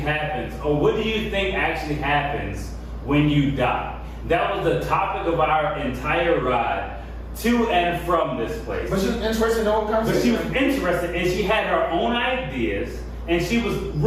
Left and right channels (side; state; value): both; identical; correlation 1.00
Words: or what do you think actually happens when you die? That was the topic of our entire ride to and from this place. But she was interested in the whole But she conversation. was interested and she had her own ideas and she was